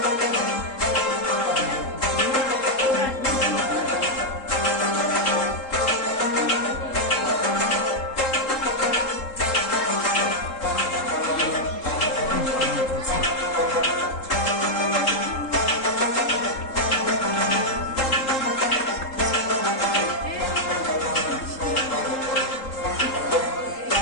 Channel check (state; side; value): late; right; 3.8 ms